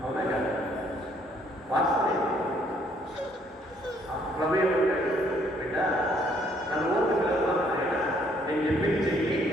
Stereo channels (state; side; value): normal; both; correlation 0.65